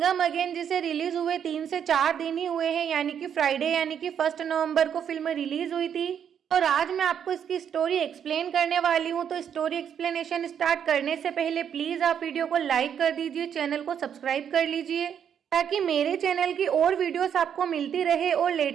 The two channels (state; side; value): quieter; left; 8.4 dB